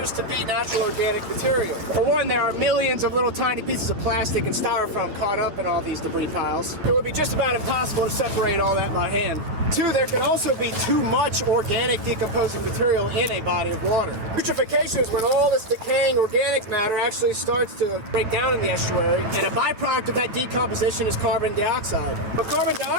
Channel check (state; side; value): late; left; 9.7 ms